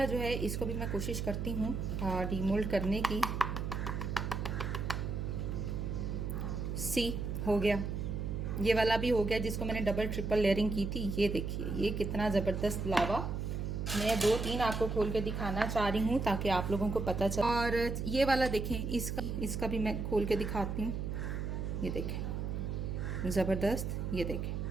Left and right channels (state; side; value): noise; right; hum, 3 dB below the sound